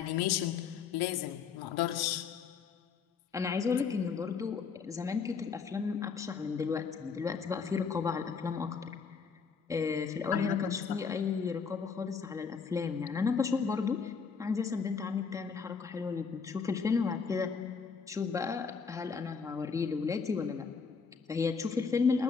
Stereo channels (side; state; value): right; quieter; 5.7 dB